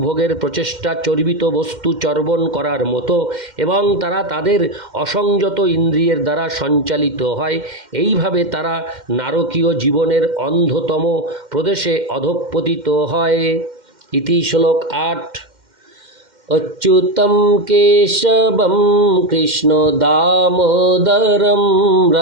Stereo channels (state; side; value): late; left; 2.1 ms